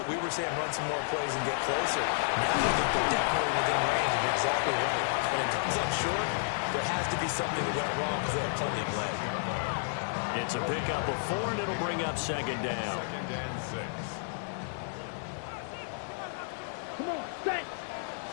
we were saying run some more plays and get closer. Now I think they're definitely within range, and you're exactly right. When it comes up short, there has to be something that went wrong because they have plenty of leg. It's a pickup of 4, and it'll bring up 2nd down. 2nd and 6. Come on, set.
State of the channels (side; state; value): right; silent; digital silence